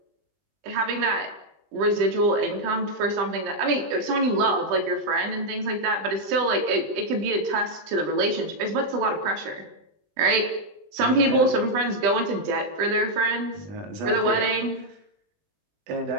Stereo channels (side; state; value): left; late; 20 ms